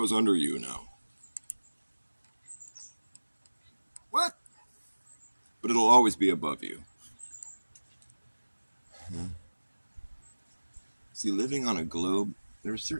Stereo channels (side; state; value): both; inverted; correlation -1.00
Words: under you now. What? But it'll always be above you. See, living on a globe, there are